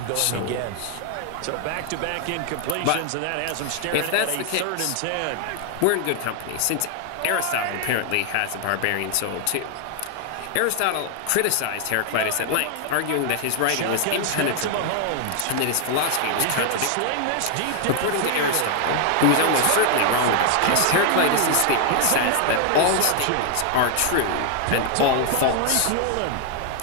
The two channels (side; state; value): both; different; correlation 0.00